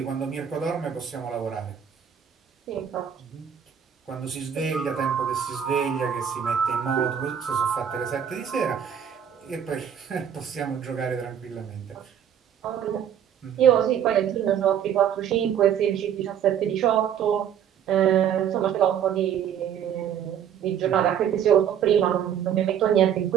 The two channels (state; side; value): quieter; left; 8.9 dB